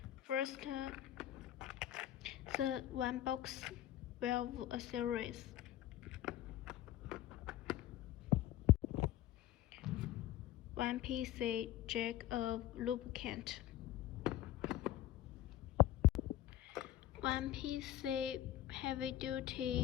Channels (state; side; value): quieter; right; 13.2 dB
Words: First, the one box valve accessories. One PC jug of lubricant. One PC